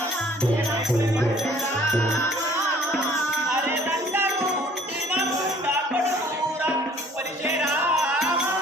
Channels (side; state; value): both; normal; correlation 0.55